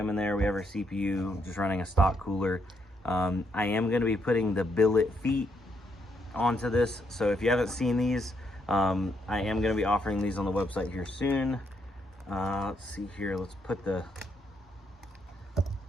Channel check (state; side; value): normal; both; correlation 0.76